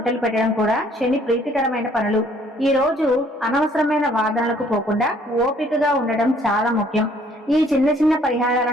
పెట్టడం కూడా శని ప్రీతికరమైన పనులు. ఈ రోజు అనవసరమైన వాదనలకు పోకుండా ఓపికగా ఉండడం చాలా ముఖ్యం. ఈ చిన్న చిన్న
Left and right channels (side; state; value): both; normal; correlation 0.61